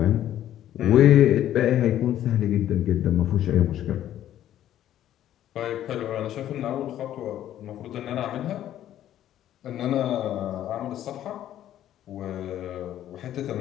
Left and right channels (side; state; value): right; quieter; 11.9 dB